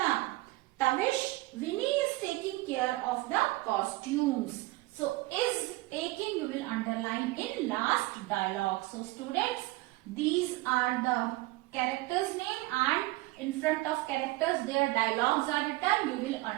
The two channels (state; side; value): quieter; left; 20.3 dB